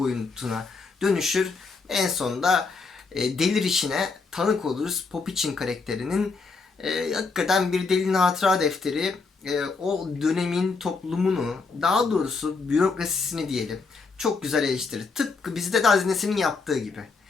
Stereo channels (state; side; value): quieter; right; 4.4 dB